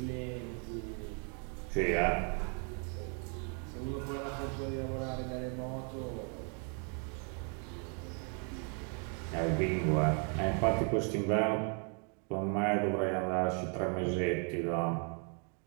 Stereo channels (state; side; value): quieter; left; 39.0 dB